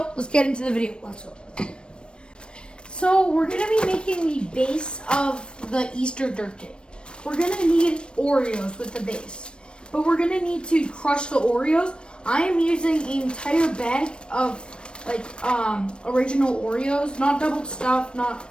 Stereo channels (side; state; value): right; late; 0.056 ms